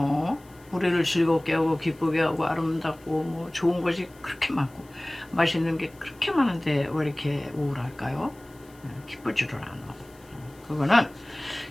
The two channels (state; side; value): noise; left; hiss, 27 dB below the sound